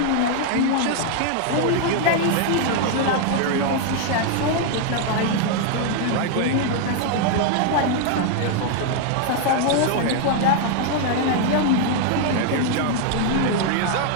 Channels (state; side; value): different; both; correlation 0.00